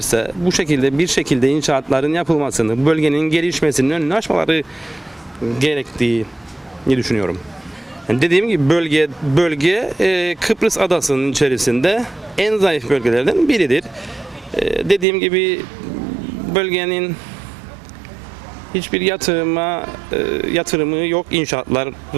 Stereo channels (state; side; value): drops out; left; at 15.1 s